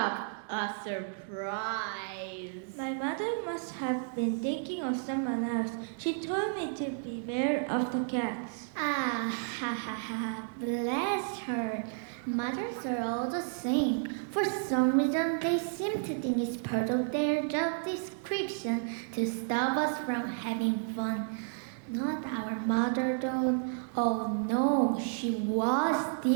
A surprise. My mother must have been thinking of someone else. She told me to beware of the cats. Ah, ha ha ha, bless her. Mothers are all the same. For some reason, they seem to think it's part of their job description to stop us from having fun. Not our mother, though. Oh no, she was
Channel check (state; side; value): silent; left; digital silence